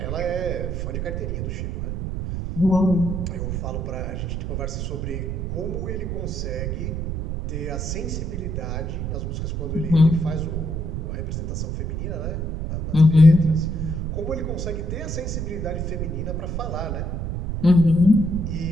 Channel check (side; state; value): right; noise; rumble, 3 dB below the sound